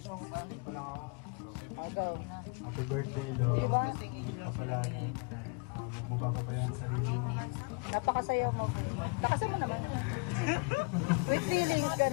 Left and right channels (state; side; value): quieter; right; 31.8 dB